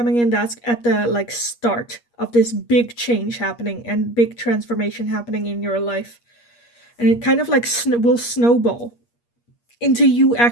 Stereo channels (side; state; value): right; late; 8.5 ms